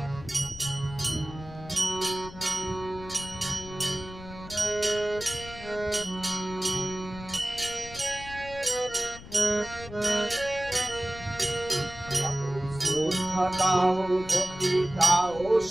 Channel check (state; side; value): noise; left; rumble, 15 dB below the sound